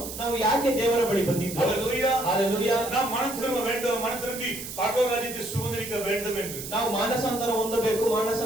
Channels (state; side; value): noise; right; hiss, 9 dB below the sound